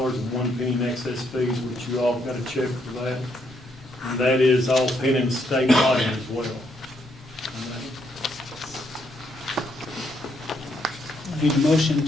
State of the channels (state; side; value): normal; both; correlation 0.75